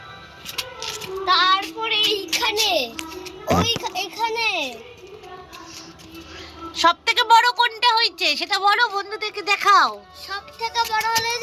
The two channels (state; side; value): identical; both; correlation 1.00